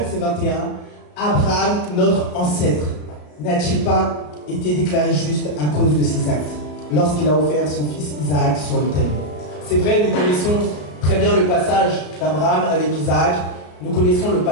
21. Abraham, notre ancêtre, n'a-t-il pas été déclaré juste à cause de ses actes lorsqu'il a offert son fils Isaac sur l'autel? C'est vrai, nous connaissons très bien le passage d'Abraham avec Isaac. Nous connaissons le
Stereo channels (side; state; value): right; late; 33 ms